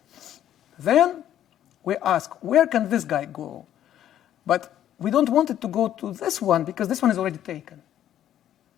Then we ask, where can this guy go? But we don't want it to go to this one because this one is already taken.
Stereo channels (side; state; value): right; quieter; 11.3 dB